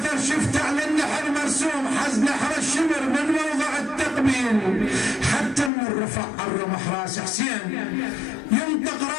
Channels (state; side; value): drops out; right; at 5.7 s